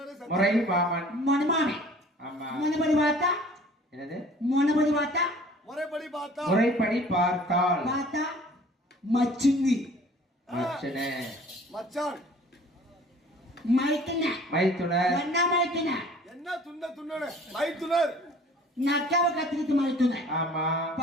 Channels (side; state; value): both; normal; correlation 0.50